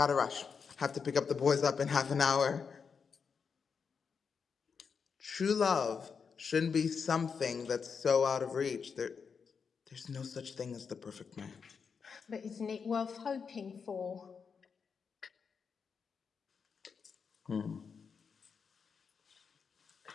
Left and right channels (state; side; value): quieter; right; 5.9 dB